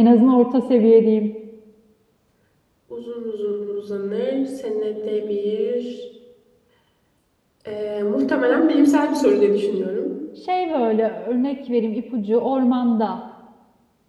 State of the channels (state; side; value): identical; both; correlation 1.00